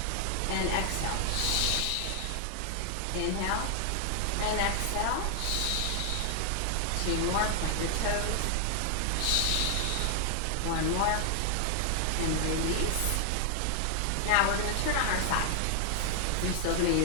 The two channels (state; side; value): different; both; correlation 0.00